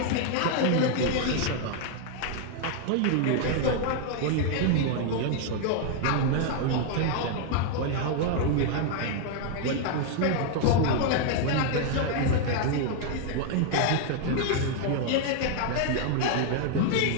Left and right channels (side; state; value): both; different; correlation 0.00